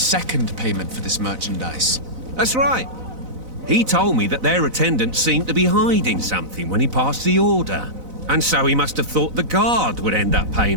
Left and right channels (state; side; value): late; left; 4.0 ms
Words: payment for this merchandise. That's right. He told me that their attendant seemed to be hiding something when he passed the order. And so he must have thought the guard would end up